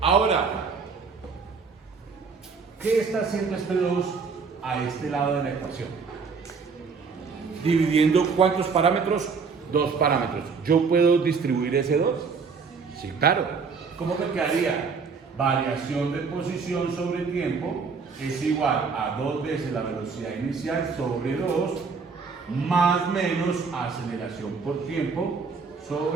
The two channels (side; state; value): left; quieter; 5.2 dB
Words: ¿qué está haciendo este 2 a este lado de la ecuación? Dividiendo ¿cuántos parámetros? 2 parámetros. ¿Yo puedo distribuir ese 2? Sí, claro. ¿Cómo me quedaría? Variación de posición sobre tiempo es igual a 2 veces la velocidad inicial sobre 2 más menos aceleración por tiempo